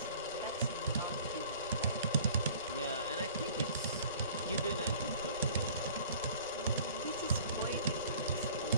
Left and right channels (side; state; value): both; inverted; correlation -0.49